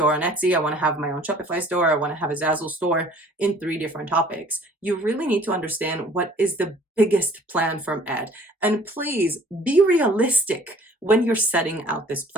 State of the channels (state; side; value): normal; both; correlation 0.53